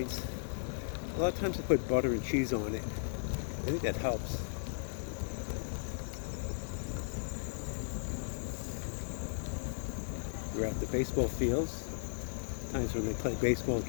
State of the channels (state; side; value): silent; right; digital silence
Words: A lot of times I put butter and cheese on it. I think that helps. We're at the baseball fields. Times when they play baseball, it